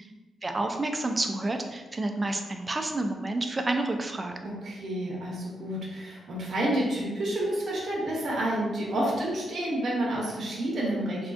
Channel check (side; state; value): both; normal; correlation 0.83